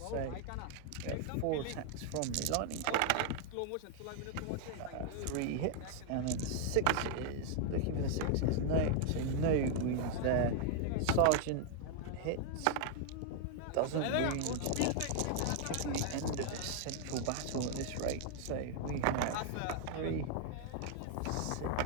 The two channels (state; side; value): different; both; correlation 0.00